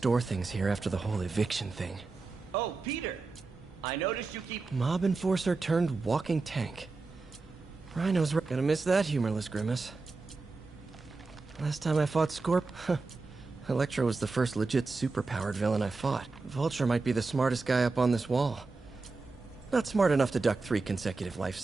things here after the whole eviction thing. Oh, Peter! I noticed you keep... Mob enforcer turned walking tank. Rhino's gonna miss that humorless grimace. Last time I fought Scorp, Electro was the first legit superpowered villain I fought. Vulture might be the smartest guy up on this wall. Not smart enough to duck 3 consecutive life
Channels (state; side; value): quieter; left; 3.9 dB